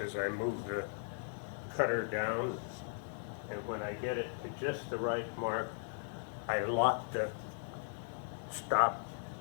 as I move the cutter down, and when I get it to just the right mark, I lock the stop.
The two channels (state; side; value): silent; right; 53 dB below the other